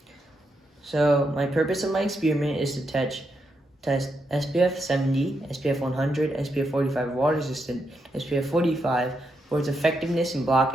So my purpose of my experiment is to test SPF 70, SPF 100, SPF 45 water resistant, SPF 45 for its effectiveness in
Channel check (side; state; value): both; normal; correlation 0.82